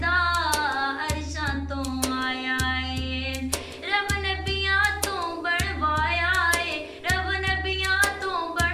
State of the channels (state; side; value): identical; both; correlation 1.00